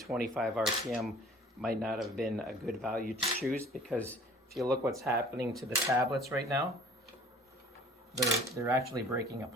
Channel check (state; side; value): normal; both; correlation 0.50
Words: RPM might not have been a good value to choose, because if you look what's happening to the tablets right now, they're actually breaking